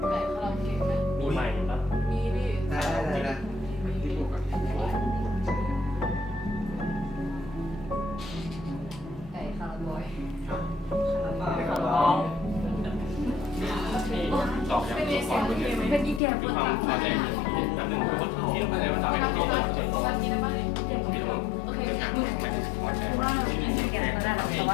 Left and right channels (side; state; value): right; drops out; at 16.2 s